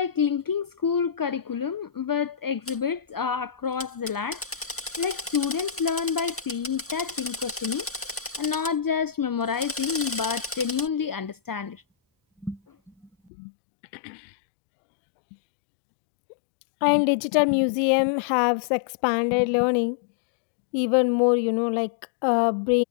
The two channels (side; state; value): right; drops out; at 13.1 s